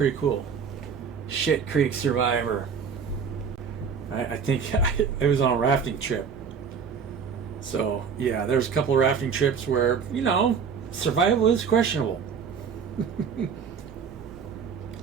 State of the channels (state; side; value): quieter; left; 6.3 dB